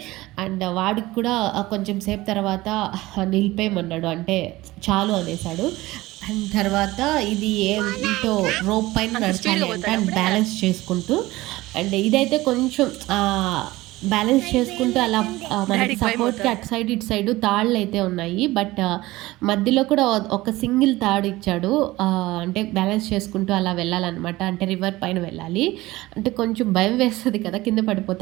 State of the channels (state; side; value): quieter; left; 18.8 dB